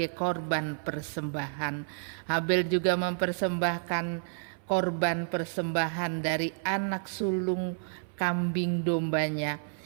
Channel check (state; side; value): silent; left; 58 dB below the other